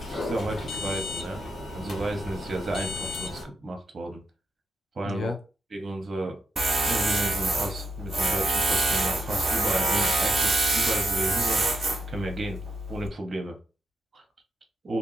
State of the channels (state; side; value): normal; both; correlation 0.84